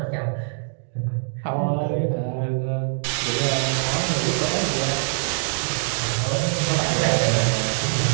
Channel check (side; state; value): left; silent; digital silence